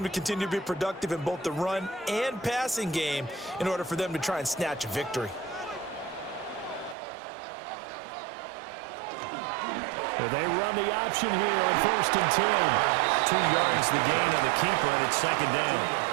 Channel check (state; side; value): drops out; left; at 7.0 s